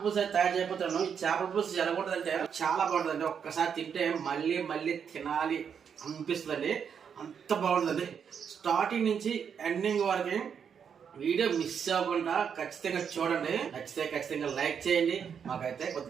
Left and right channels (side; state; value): left; quieter; 7.3 dB